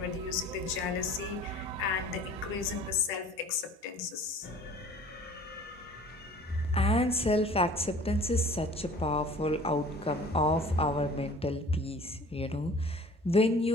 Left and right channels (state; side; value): normal; both; correlation 0.47